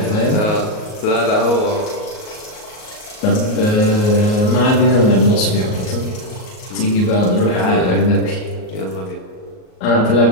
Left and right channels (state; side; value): late; right; 38 ms